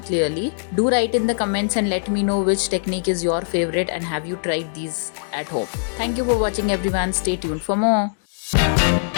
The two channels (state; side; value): silent; right; digital silence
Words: clearly. Do write in the comments and let me know which technique is your favorite and have you tried these at home. Thank you for watching everyone. Stay tuned for more.